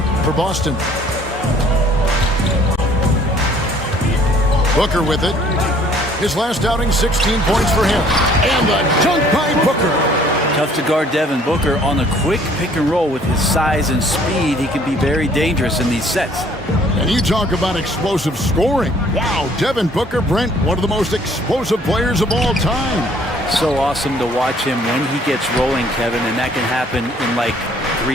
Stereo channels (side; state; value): both; normal; correlation 0.58